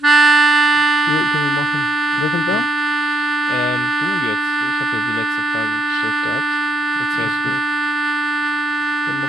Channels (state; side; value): normal; both; correlation 0.77